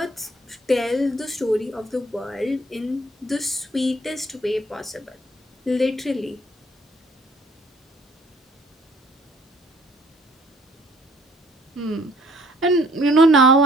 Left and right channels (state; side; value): normal; both; correlation 0.60